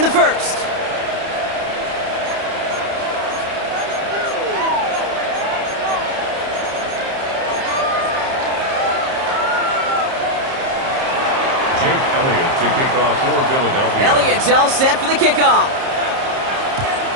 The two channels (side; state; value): left; late; 30 ms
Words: the first. Jake Elliott to kick off for Philadelphia. Elliott's all set for the kickoff.